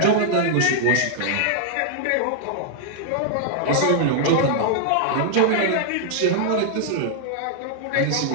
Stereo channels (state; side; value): different; both; correlation -0.01